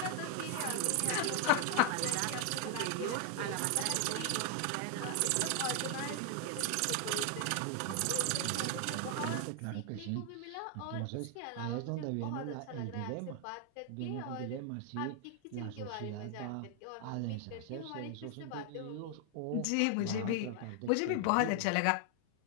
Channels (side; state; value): both; different; correlation 0.00